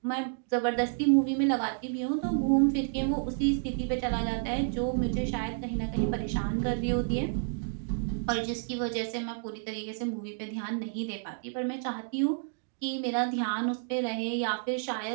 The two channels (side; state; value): left; silent; digital silence